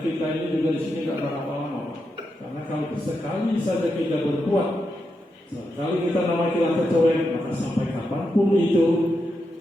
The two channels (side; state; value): both; normal; correlation 0.85